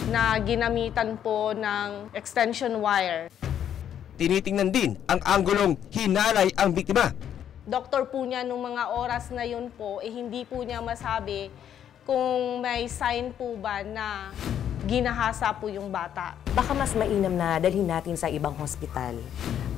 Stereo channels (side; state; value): right; quieter; 9.7 dB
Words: na ginamitan po ng extension wire. Tinitingnan din ang anggulong hinalay ang biktima. Doktor po niya nung mga oras na yun po, hindi po niya masabi kung may sign po ba na ginahasa po yung bata. Baka mas mainam na dalhin natin sa ibang hospital